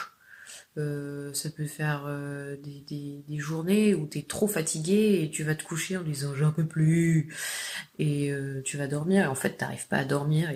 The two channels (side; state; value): both; identical; correlation 1.00